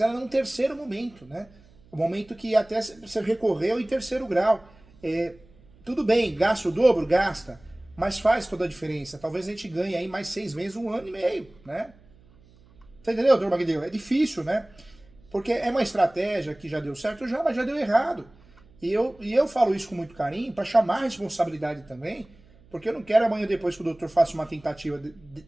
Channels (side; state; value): right; noise; hum, 27 dB below the sound